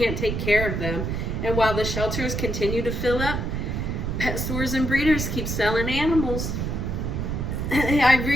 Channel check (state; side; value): noise; right; rumble, 2 dB below the sound